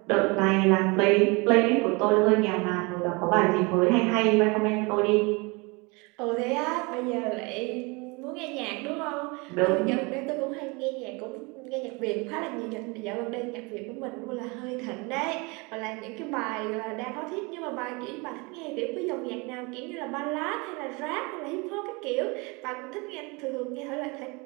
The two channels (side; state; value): left; quieter; 27.7 dB